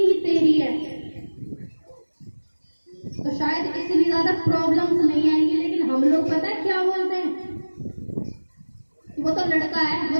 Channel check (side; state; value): both; inverted; correlation -1.00